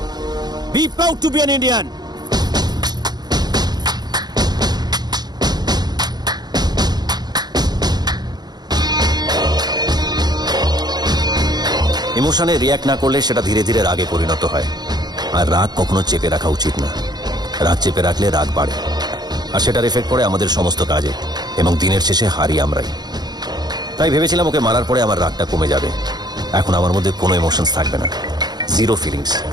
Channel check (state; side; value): late; left; 0.20 ms